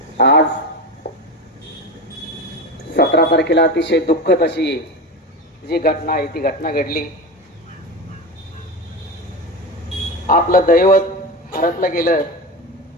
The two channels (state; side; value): normal; both; correlation 0.23